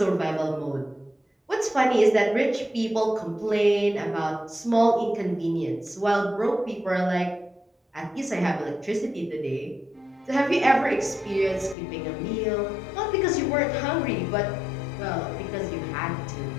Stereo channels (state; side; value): drops out; right; at 11.8 s